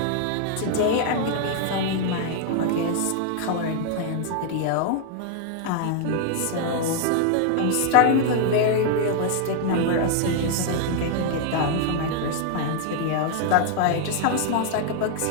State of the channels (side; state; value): both; different; correlation 0.00